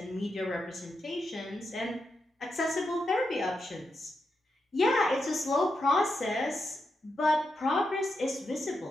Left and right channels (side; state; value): both; normal; correlation 0.85